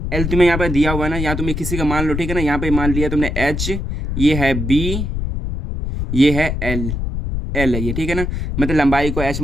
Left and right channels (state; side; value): noise; left; rumble, 3 dB below the sound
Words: तुम्हें यहाँ पर दिया हुआ है ना, या तुम्हें किसी का मान लो, ठीक है ना। यहाँ पे मान लिया तुमने H, ये है B, ये है L, एल है ये, ठीक है ना। मतलब लंबाई को एच